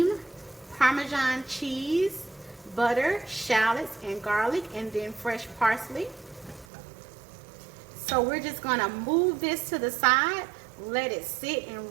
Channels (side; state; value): left; drops out; at 6.7 s